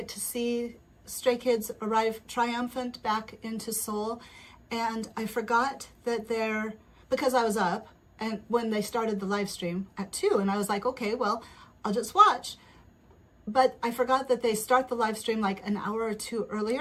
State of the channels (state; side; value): identical; both; correlation 1.00